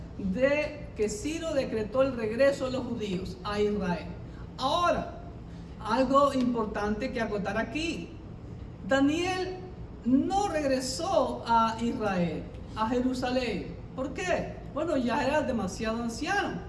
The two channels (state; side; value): identical; both; correlation 1.00